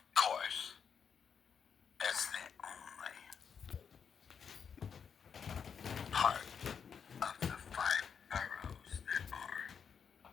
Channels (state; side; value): quieter; right; 6.9 dB